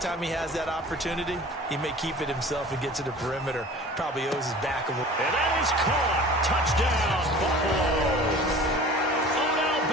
time he has that opportunity, he may keep it himself and get to the perimeter. Probably owes his back a little. And that is caught. Touchdown, Buffalo. Odell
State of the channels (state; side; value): normal; both; correlation 0.43